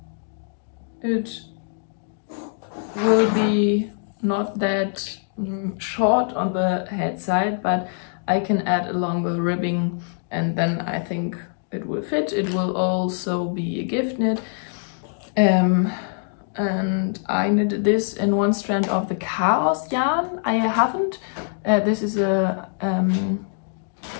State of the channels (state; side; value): silent; right; digital silence